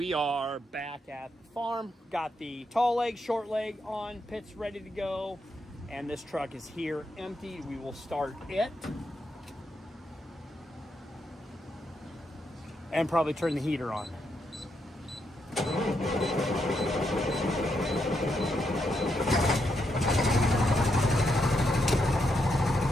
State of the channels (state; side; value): normal; both; correlation 0.80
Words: are back at the farm. Got the tall leg, short leg on, pit's ready to go. And this truck is here empty. We will start it. And probably turn the heater on.